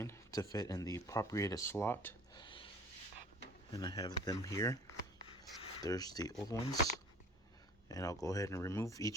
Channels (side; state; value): both; normal; correlation 0.47